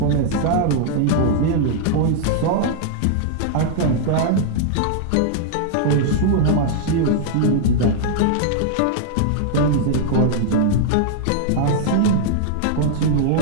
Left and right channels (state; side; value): different; both; correlation -0.01